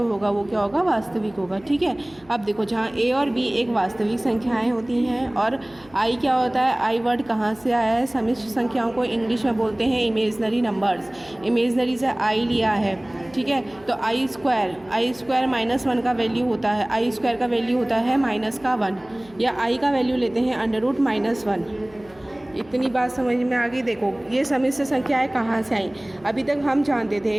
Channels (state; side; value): noise; left; hum, 26 dB below the sound